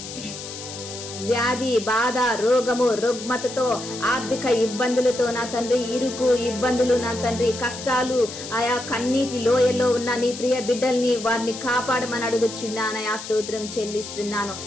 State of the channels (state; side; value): noise; left; hiss, 11 dB below the sound